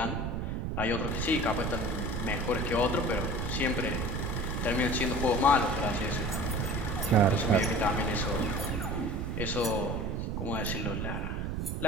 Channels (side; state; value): right; noise; rumble, 2 dB below the sound